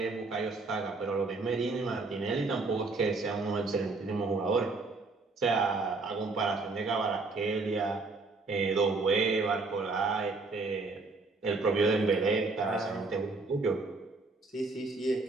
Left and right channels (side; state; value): left; quieter; 3.7 dB